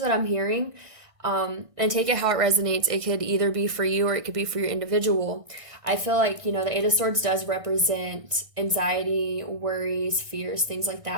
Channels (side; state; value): left; late; 1.6 ms